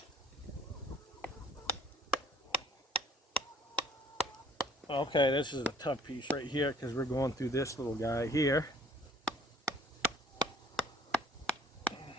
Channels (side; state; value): both; normal; correlation 0.56